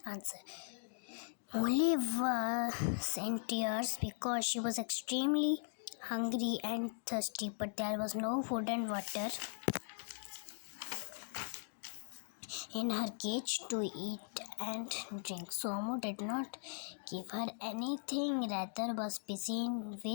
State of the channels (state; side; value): silent; right; digital silence